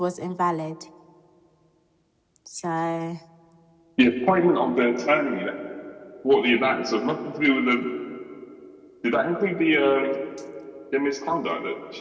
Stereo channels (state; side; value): identical; both; correlation 1.00